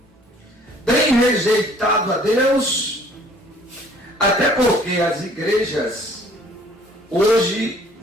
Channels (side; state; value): both; normal; correlation 0.56